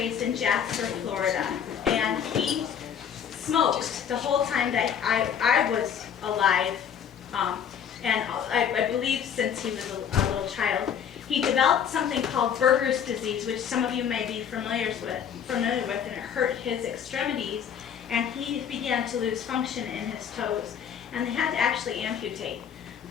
in Jasper, Florida, and he smoked the whole time that I was alive, and I believe since he was a little child. He developed something called Berger's disease, which some of you may be familiar with, and it hurt his extremities, and he began to lose function in his toes, and they had to actually amputate.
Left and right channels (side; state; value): right; quieter; 8.3 dB